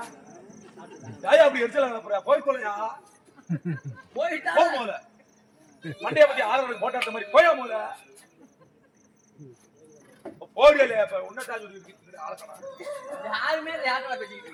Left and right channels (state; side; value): identical; both; correlation 1.00